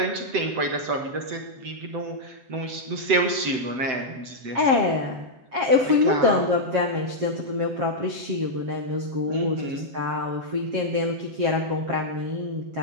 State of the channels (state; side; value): late; left; 7.8 ms